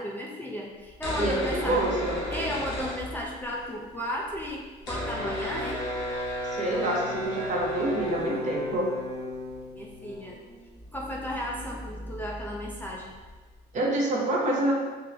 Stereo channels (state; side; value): normal; both; correlation 0.43